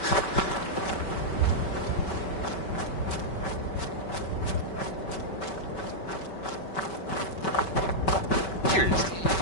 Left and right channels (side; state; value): right; late; 5.2 ms